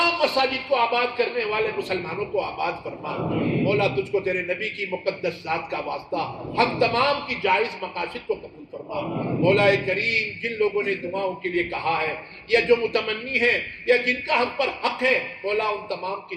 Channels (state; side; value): identical; both; correlation 1.00